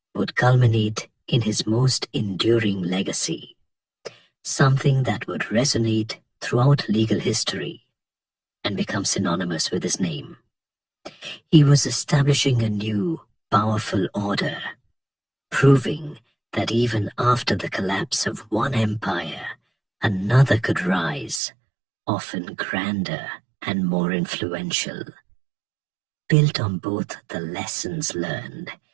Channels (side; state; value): left; drops out; at 21.4 s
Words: would culminate in his most enduring legacy, something that would resonate throughout legal history and become synonymous with his name. He was establishing a new, powerful order, proving that even after the collapse of one empire, another could rise, often grander and more influential, built on both the lessons learned